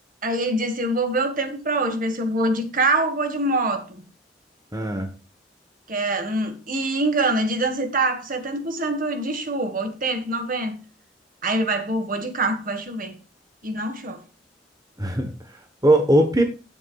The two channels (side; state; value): both; normal; correlation 0.36